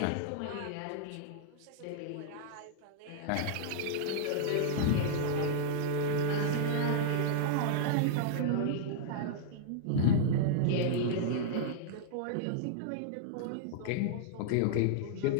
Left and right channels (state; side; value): different; both; correlation -0.01